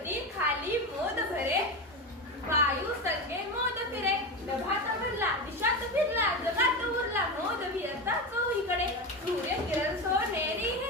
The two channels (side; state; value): both; normal; correlation 0.19